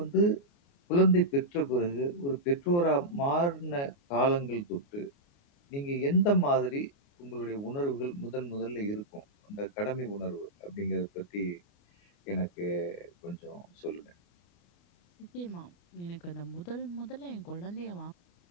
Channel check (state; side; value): late; right; 29 ms